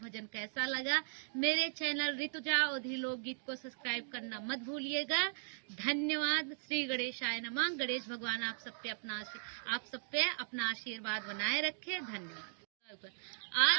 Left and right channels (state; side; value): silent; left; digital silence